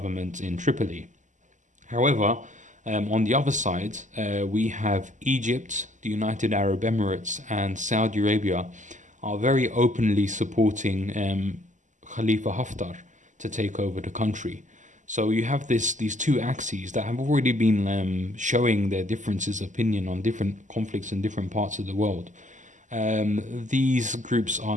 in Tripoli. However, on the other side, we have Egypt, the United Arab Emirates, and Saudi Arabia are very openly supporting Khalifa Haftar to take over the country. So you have these two axes that have already been showing their differences of opinion on different conflicts in different parts of the world. These groups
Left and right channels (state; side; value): late; left; 0.36 ms